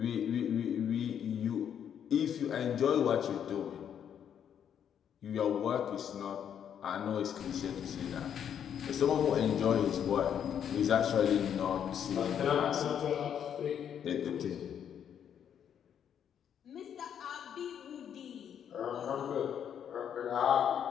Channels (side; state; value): right; quieter; 8.8 dB